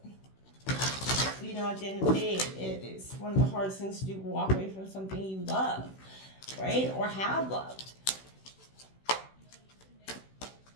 at the end of the day, it is one of the hardest things to do, walk away from something you love, right? Or have loved.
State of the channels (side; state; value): right; late; 16 ms